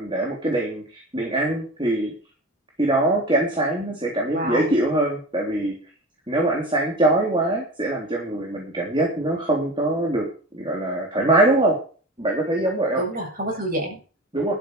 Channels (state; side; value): normal; both; correlation 0.32